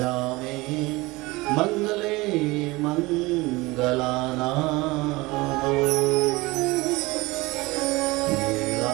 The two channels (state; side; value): quieter; left; 22.0 dB